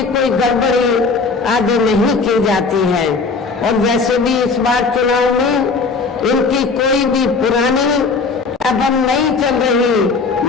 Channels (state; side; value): quieter; right; 4.4 dB